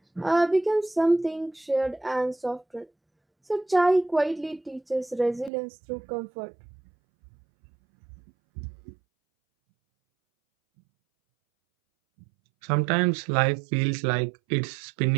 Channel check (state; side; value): drops out; left; at 5.5 s